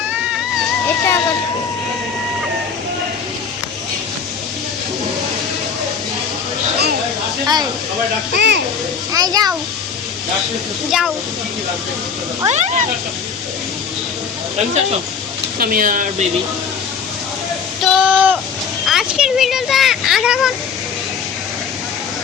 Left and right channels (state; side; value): quieter; right; 6.3 dB